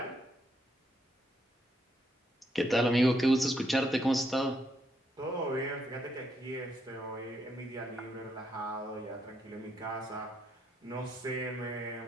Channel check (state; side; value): normal; both; correlation 0.76